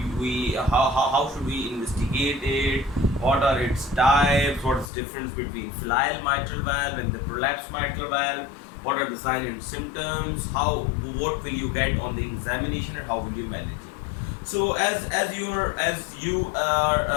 we investigate it, what are its types, what is the difference between filial mitral valve and the prolapsed mitral valve, what are the signs and symptoms, what will you get on the examination, and how will you manage it. So as you are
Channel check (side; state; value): right; drops out; at 4.9 s